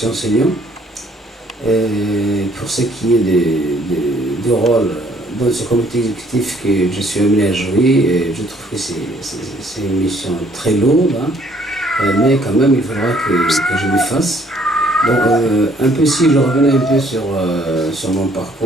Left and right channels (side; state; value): both; normal; correlation 0.62